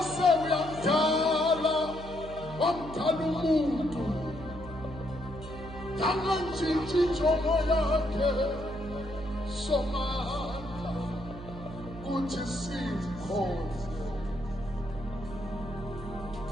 uyamdala wamdala umuntu yangantshintshi injongo yakhe somandla kuthi simkhonze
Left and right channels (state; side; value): noise; right; hum, 13 dB below the sound